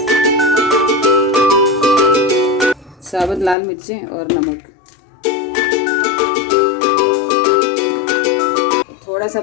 साबुत लाल मिर्चें और नमक। थोड़ा सा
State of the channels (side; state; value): right; drops out; at 3.6 s